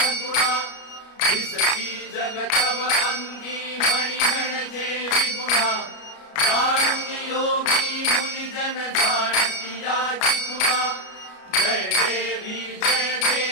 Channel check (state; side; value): late; right; 33 ms